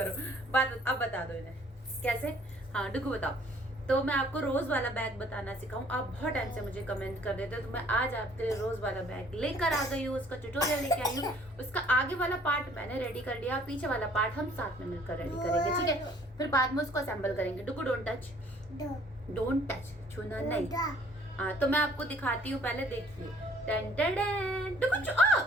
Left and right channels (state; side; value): normal; both; correlation 0.58